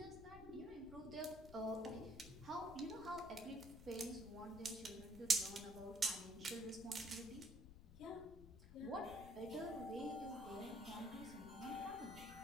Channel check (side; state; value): left; noise; rumble, 14 dB below the sound